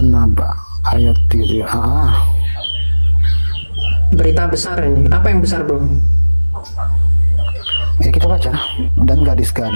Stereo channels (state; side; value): inverted; both; correlation -1.00